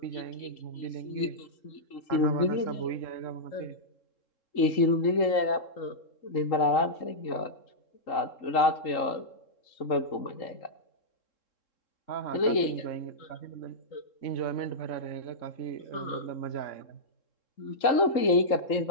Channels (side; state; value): right; late; 3.8 ms